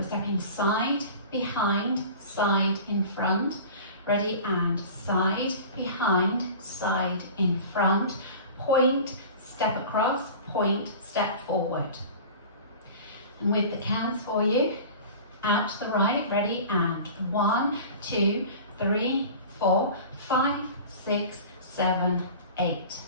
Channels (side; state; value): both; inverted; correlation -0.38